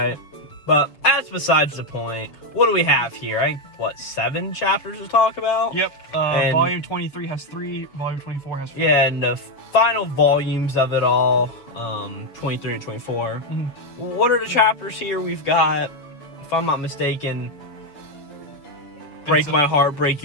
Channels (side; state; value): right; late; 7.0 ms